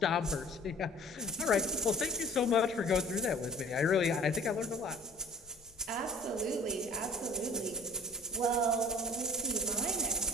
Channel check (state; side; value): noise; left; rumble, 27 dB below the sound